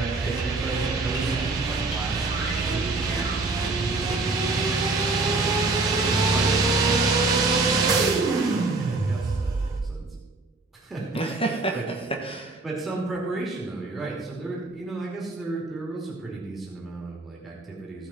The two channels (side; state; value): left; quieter; 3.4 dB